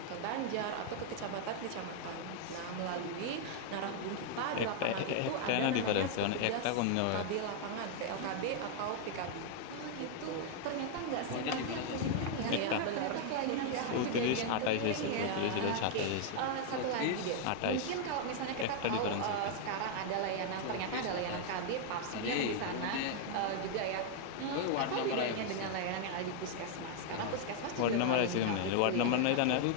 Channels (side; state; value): both; different; correlation 0.00